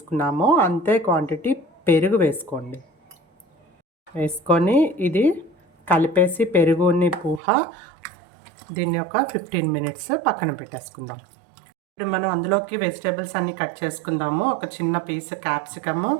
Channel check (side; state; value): left; drops out; at 7.4 s